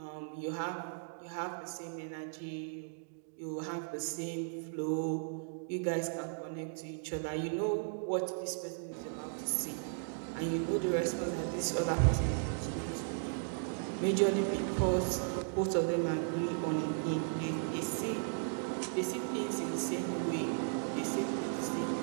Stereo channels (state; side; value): silent; left; digital silence